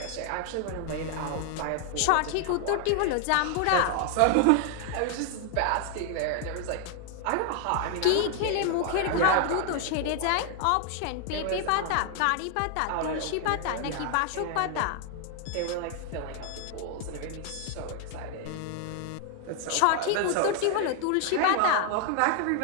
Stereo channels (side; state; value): both; different; correlation 0.00